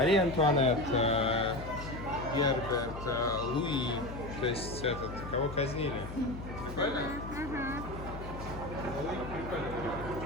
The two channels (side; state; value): left; noise; hum, 10 dB below the sound